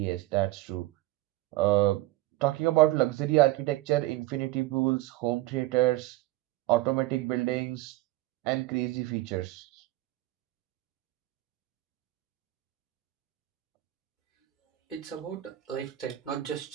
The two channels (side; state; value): left; quieter; 17.4 dB